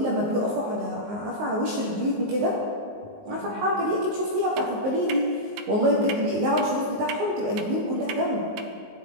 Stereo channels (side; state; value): left; late; 19 ms